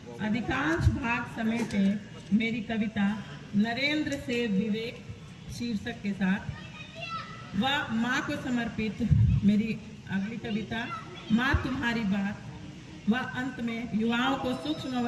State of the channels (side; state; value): both; identical; correlation 1.00